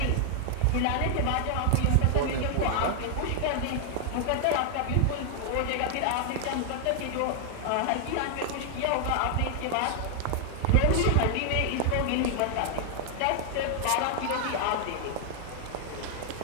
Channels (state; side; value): different; both; correlation 0.00